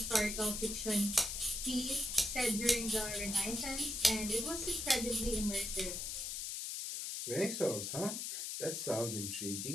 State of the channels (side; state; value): left; noise; hiss, 4 dB below the sound